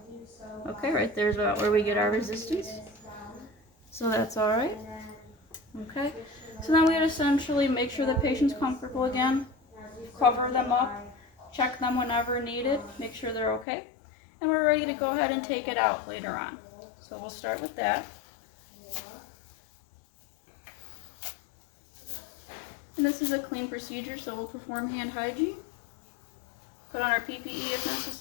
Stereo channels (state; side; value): drops out; right; at 13.7 s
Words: Okay, right there's about where we get our resistance. So that's alright. Okay, so then we'd essentially make sure the patient's comfortable again, cover them up, check them whenever needed, make sure they're okay, and we're ready to go ahead and take it out later on. So we'll start with that. And this is a clean procedure, so we'll perform hand hygiene. Put on our PPE as